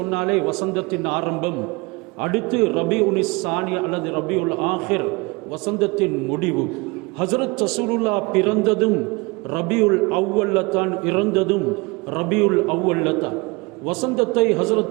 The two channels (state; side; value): quieter; left; 26.0 dB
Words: வசந்தத்தின் ஆரம்பம். அடுத்து ரபீஉனிஸ் சானி அல்லது ரபீஉல் ஆஹிர், வசந்தத்தின் முடிவு. ஹஸரத் ரசூலுல்லாஹ் பிறந்ததும் ரபீஉல் அவ்வல்ல தான், இறந்ததும் ரபீஉல் அவ்வல்ல தான். வசந்தத்தை